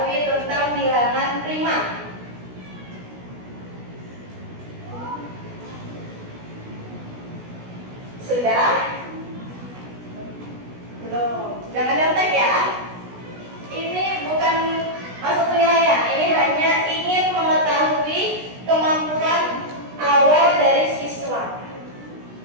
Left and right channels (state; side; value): late; left; 16 ms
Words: tentang bilangan prima? Sudah? Belum. Jangan nyontek ya. Ini bukan masuk penilaian. Ini hanya ingin mengetahui kemampuan awal dari siswa.